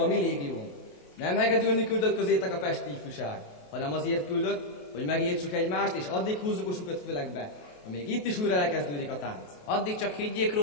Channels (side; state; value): right; late; 28 ms